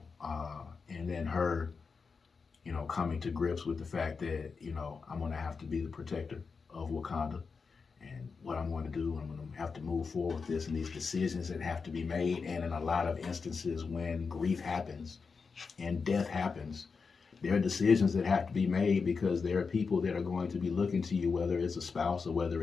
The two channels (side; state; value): right; quieter; 5.0 dB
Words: And then her, coming to grips with the fact that, I'm going to have to be the protector of Wakanda, and what I'm going to do, I'm going to have to move forward with this and these decisions that have to be made. And in a lot of instances when grief happens and death happens, there are decisions that have to be made, because there are people that are going to be looking to you, whether it's a spouse or whether